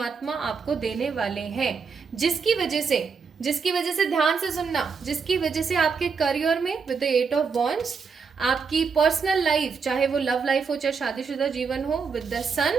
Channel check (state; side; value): quieter; left; 5.4 dB